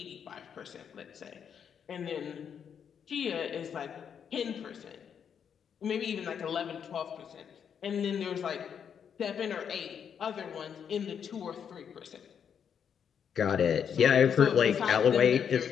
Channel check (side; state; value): right; quieter; 7.7 dB